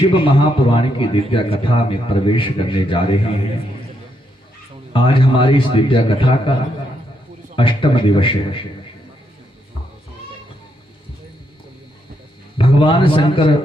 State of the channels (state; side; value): normal; both; correlation 0.78